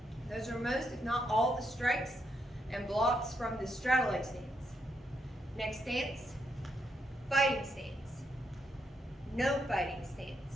Those are most, if not all, the strikes and blocks from the straddle leg stance. Next stance, fighting stance, no fighting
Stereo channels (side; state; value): both; normal; correlation 0.79